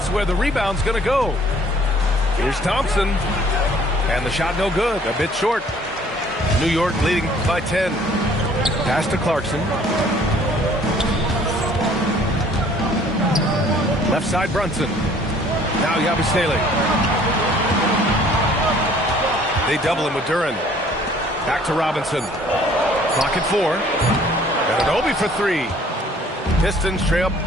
where the rebound's going to go. Here's Thompson. And the shot no good. A bit short. New York leading by 10. Pass to Clarkson. Left side Brunson. Now Yabusele. They double him with Duran. Back to Robinson. Clock at 4. Ananobi for 3. Pistons trail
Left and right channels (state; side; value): normal; both; correlation 0.56